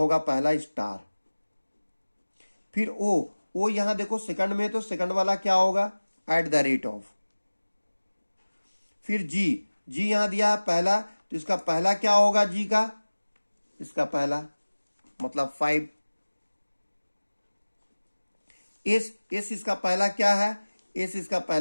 पहला स्टार। फिर O यहां देखो सेकंड में, तो सेकंड वाला क्या होगा? At the rate of. फिर G यहां दिया है पहला, तो इसका पहला क्या होगा? G का, इसका पहला मतलब 5। S इसका पहला क्या है? S इसका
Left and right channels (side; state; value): both; inverted; correlation -1.00